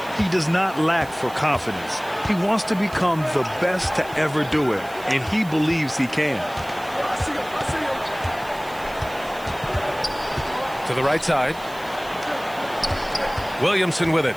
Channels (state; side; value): noise; right; hiss, 21 dB below the sound